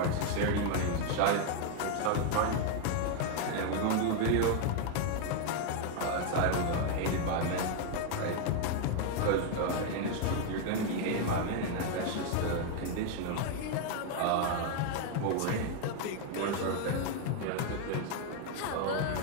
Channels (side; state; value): both; different; correlation 0.01